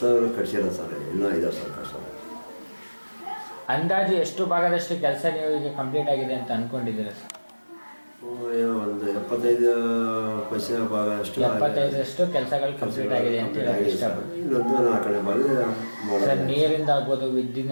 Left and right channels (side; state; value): both; inverted; correlation -1.00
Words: ಸರ್. ಇನ್ನೂ ಇದಾವೆ ಸರ್ ಕಟ್ಸೋದು. ಅಂದಾಜು ಎಷ್ಟು ಭಾಗದಷ್ಟು ಕೆಲಸ ನೀವು ಈಗ ಕಂಪ್ಲೀಟ್ ಆಗಿದೆ ಅಂತ ಅಂದ್ಕೊಂಡಿದ್ದೀರಾ ಸರ್? ಒಂದು 75% ಭಾಗ ಅಷ್ಟು 75% ಕೆಲಸಗಳು ಕಂಪ್ಲೀಟ್ ಆಗಿದೆ ಅಂತ ಹೇಳಕ್ಕೆ ಇಷ್ಟಪಡ್ತೀನಿ. ಇನ್ನೊಂದು 4ನೇ ಭಾಗ ಸರ್, ನೀರಿಂದ ಆಗ್ಬೋದು,